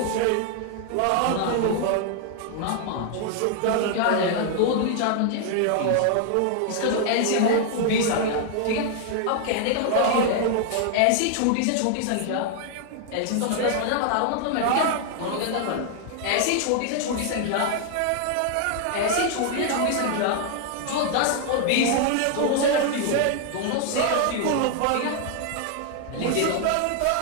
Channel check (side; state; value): both; different; correlation 0.00